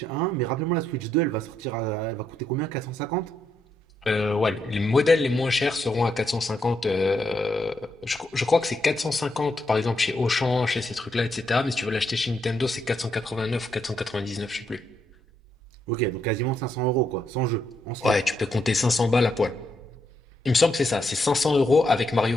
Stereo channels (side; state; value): both; normal; correlation 0.78